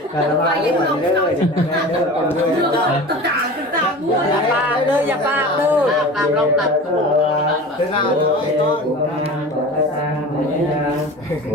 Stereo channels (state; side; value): normal; both; correlation 0.36